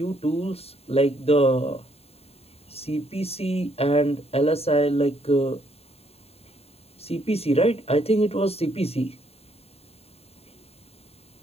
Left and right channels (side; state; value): right; late; 0.29 ms